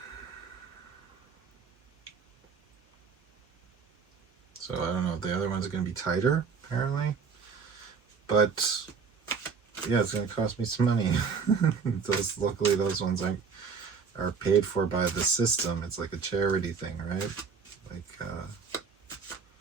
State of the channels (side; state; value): left; quieter; 5.7 dB